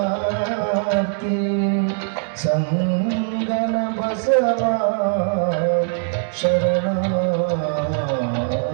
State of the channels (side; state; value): left; silent; 65 dB below the other